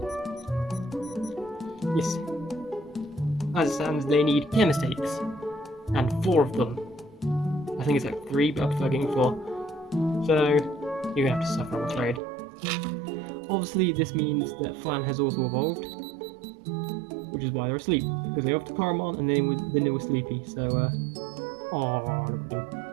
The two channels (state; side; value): drops out; left; at 12.2 s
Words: Yes. As it stands, they need care mistakes. And 4 of them. I think it's like 3, but I prefer getting 4. So, you're gonna have to suffer, I'm afraid. Obviously, this means that Flan has also evolved, which is why they're asleep, because they off to Caramon and then they were sleepy. So, oh, look at them.